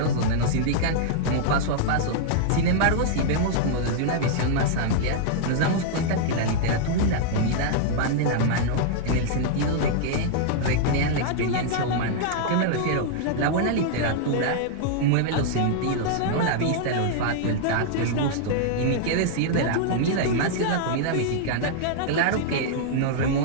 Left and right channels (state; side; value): different; both; correlation -0.01